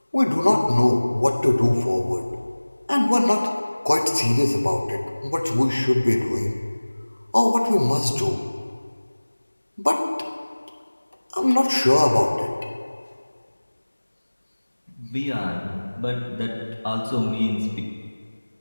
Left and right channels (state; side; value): inverted; both; correlation -1.00